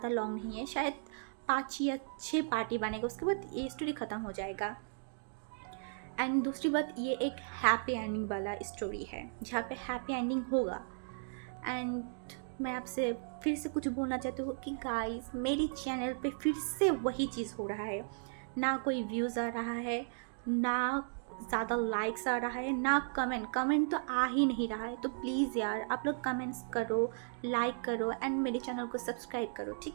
लॉन्ग नहीं है। शायद 5 या 6 पार्टी बनेगा, उसके बाद ये स्टोरी ख़त्म हो जाएगा। एंड दूसरी बात, ये एक हैप्पी एंडिंग वाला स्टोरी है जहाँ पे हैप्पी एंडिंग होगा। एंड मैं आपसे फिर से कुछ बोलना चाहती हूँ कि गाइस, मेरी चैनल पे फिर से वही चीज़ हो रहा है। ना कोई व्यूज़ आ रहा है, ना ज़्यादा लाइक्स आ रहा है, ना कमेंट तो आ ही नहीं रहा है। तो प्लीज़ यार, आप लोग कमेंट्स करो, लाइक करो एंड मेरे चैनल को सब्सक्राइब करो,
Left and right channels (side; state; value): left; silent; digital silence